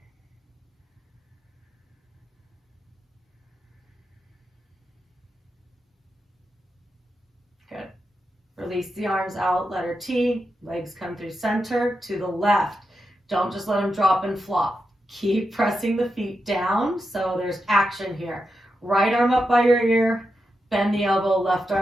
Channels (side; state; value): both; normal; correlation 0.87